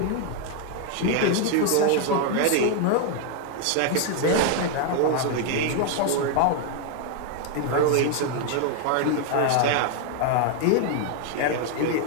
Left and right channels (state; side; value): different; both; correlation 0.00